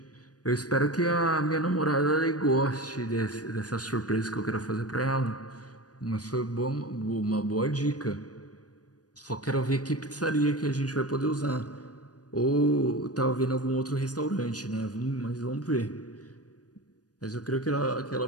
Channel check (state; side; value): late; right; 0.68 ms